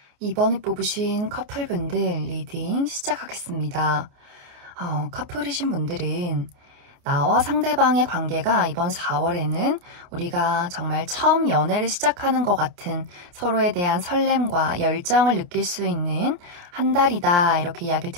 이번에 뽑으신 커플분들 리딩 시작하겠습니다. 커플이신 분들은 나와 상대방의 관계가 이번 4월에는 우리가 정말 처음 연애를 시작하는 것 같은 서로에 대한 설렘과 열정을 느낄 수 있는 한 달이다, 이렇게 이야기를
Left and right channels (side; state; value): left; late; 29 ms